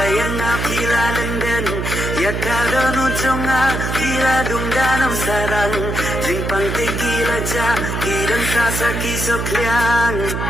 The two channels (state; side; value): noise; right; hum, 2 dB below the sound